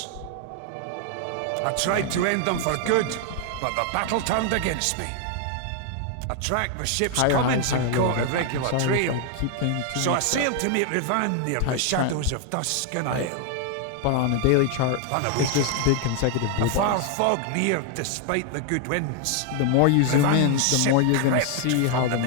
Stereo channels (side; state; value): both; different; correlation 0.00